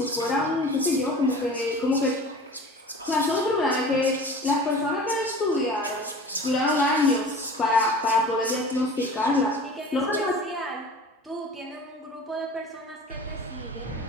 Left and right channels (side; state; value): both; normal; correlation 0.41